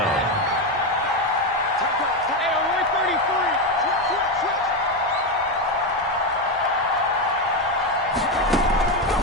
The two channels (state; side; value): normal; both; correlation 0.10